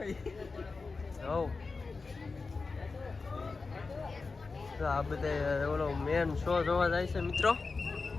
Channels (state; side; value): quieter; right; 4.2 dB